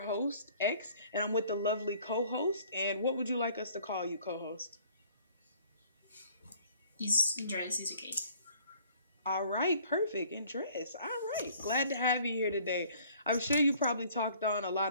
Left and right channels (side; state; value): both; inverted; correlation -0.56